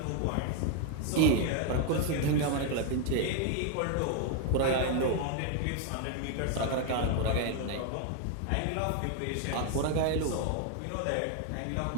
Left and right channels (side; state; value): both; different; correlation 0.01